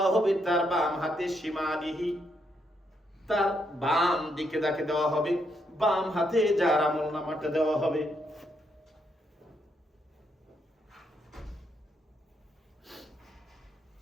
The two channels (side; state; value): both; normal; correlation 0.77